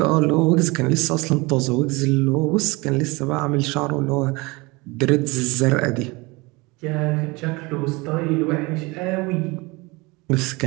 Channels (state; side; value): quieter; left; 24.7 dB